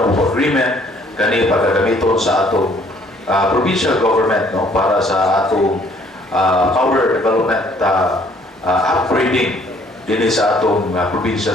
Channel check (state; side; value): normal; both; correlation 0.61